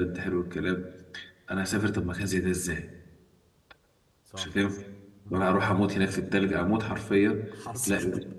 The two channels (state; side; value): identical; both; correlation 1.00